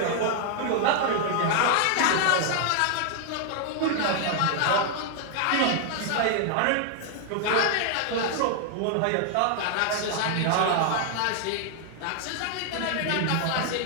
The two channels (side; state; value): both; different; correlation 0.00